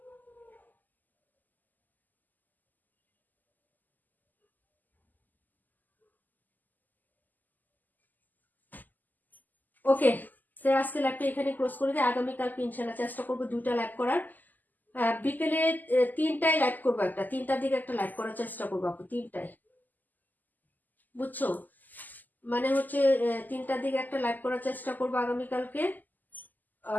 ওকে, সে আজকে লাইভটা এখানে ক্লোজ করে দিই। আগামীকালকে ইনশাল্লাহ চেষ্টা করবো 2টা লাইভ করার। বিকেলে 3টায় লাইভ করবো, 3টার দিকে একটা লাইভ করার চেষ্টা করবো আপু, 3টায়, বুঝছো? মানে হচ্ছে 3টার দিকে একটা লাইভ করার চেষ্টা করবো আগামীকালকে।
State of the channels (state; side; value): late; right; 0.085 ms